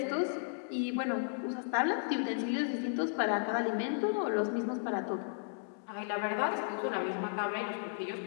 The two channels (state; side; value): silent; right; digital silence